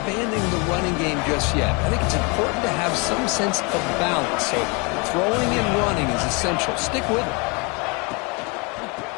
the running game just yet. I think it's important to have some sense of balance. So throwing and running is essential. Stick with it.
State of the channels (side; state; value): right; quieter; 30.7 dB